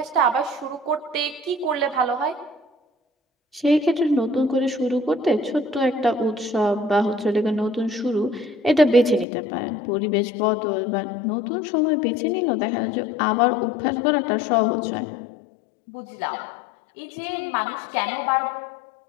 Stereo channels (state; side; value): drops out; right; at 9.2 s